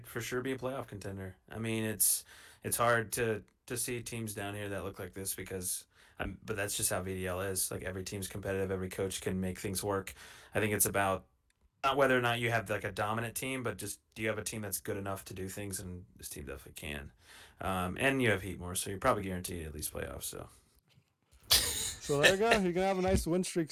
for sure be a playoff contender. I mean, it's hard to see teams down here that look like this because but that's just how VDL is. Like every team's competitive, every coach can make things work. I think it's about not whether or not you have like a dominant team, but just do you have a team that's good enough to do things, and this team definitely can. And you have Heat more, so you're probably guaranteed at least playoffs. So So there you go. You're gonna have a nice win streak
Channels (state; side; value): identical; both; correlation 1.00